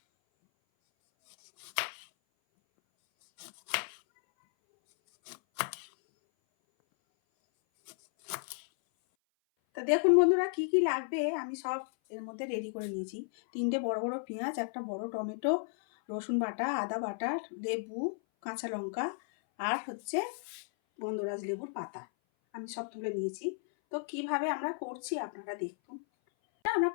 তা দেখুন বন্ধুরা, কি কি লাগবে আমি সব এর মধ্যে রেডি করে নিয়েছি। 3টে বড় বড় পেঁয়াজ, একটা বড় টমেটো, রসুন বাটা, আদা বাটা, লেবু, কাঁচা লঙ্কা, আর হচ্ছে গন্ধরাজ লেবুর পাতা আমি সব তুলে নিয়েছি। তো কিভাবে আমরা করছি আপনারা দেখুন। আমরা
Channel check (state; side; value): silent; right; 55 dB below the other